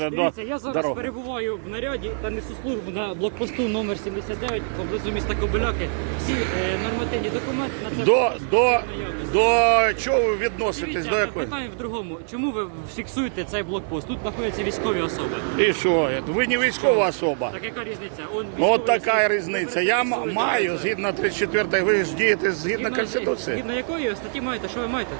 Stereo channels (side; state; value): left; silent; 63 dB below the other